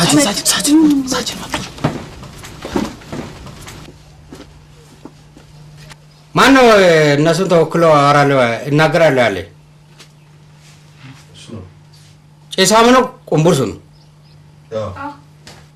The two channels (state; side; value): identical; both; correlation 1.00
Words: ማን ነው እነሱን ተወክሎ አወራለሁ እናገራለሁ ያለ? ጭሳም ነው? ቁምቡርሱ ነው?